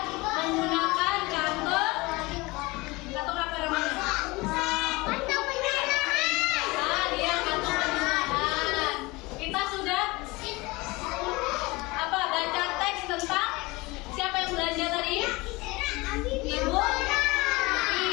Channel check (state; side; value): quieter; right; 23.1 dB